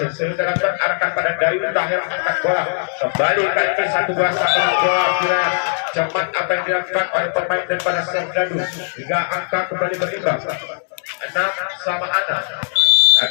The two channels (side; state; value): right; silent; digital silence